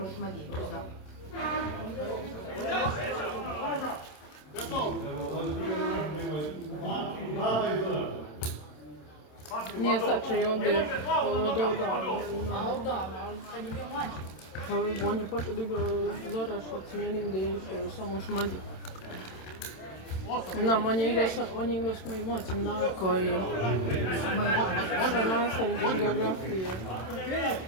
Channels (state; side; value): late; right; 27 ms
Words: u Šmadi, da. Nije sačaj ovdje od odavno. A odavno, ali kad je bio mlađi. Pa on je počeo da igra Zoraš od smijenim gdje je išao samo u Šmadi. Znam, on je igrao s mojim ocem Darko i sa nastavnik iz geografije. Kad je